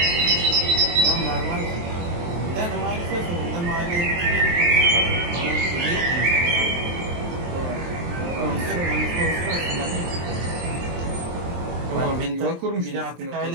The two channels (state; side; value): late; left; 23 ms